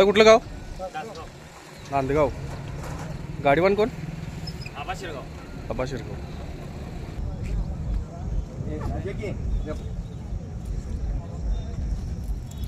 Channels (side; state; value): both; identical; correlation 1.00